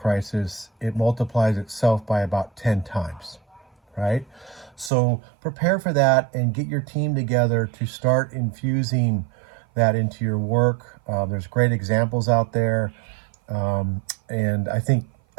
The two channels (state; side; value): drops out; left; at 4.9 s